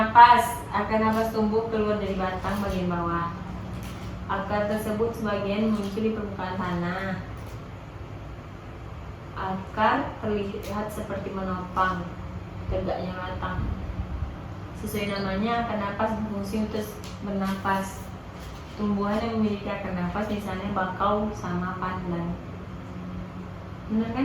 napas tumbuh keluar dari batang bagian bawah. Akar tersebut sebagian muncul di permukaan tanah. Akar terlihat seperti menopang tegaknya batang. Sesuai namanya, akar napas berfungsi untuk bernapas. Tumbuhan yang memiliki akar napas misalnya bakau sama pandan. Benar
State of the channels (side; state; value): both; identical; correlation 1.00